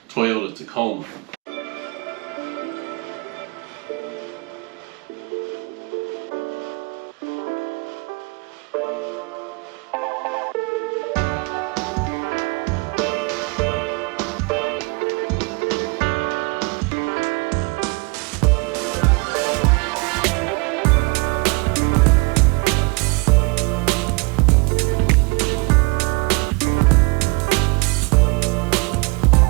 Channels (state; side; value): quieter; left; 30.6 dB